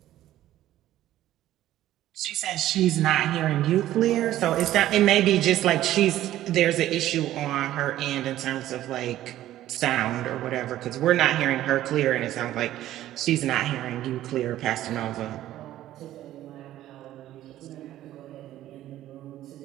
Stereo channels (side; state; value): left; quieter; 13.6 dB